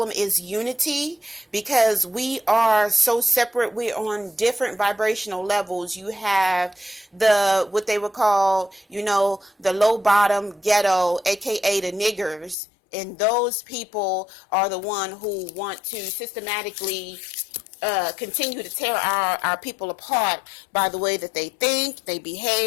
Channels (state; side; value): drops out; right; at 12.6 s